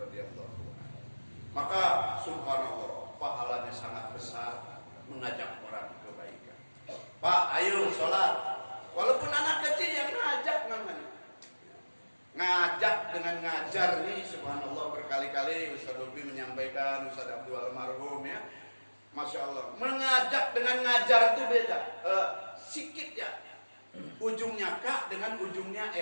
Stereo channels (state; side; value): inverted; both; correlation -1.00